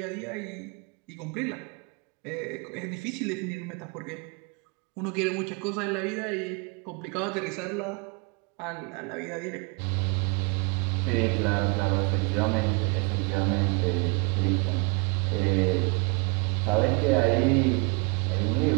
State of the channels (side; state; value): left; quieter; 31.1 dB